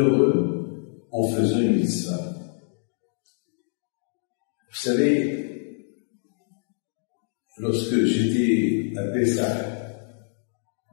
en faisant une mitzvah. Vous savez, lorsque j'étais à Pessah,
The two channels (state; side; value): silent; right; 61 dB below the other